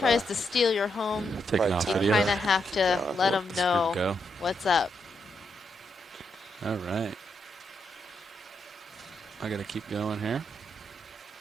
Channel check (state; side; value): normal; both; correlation 0.81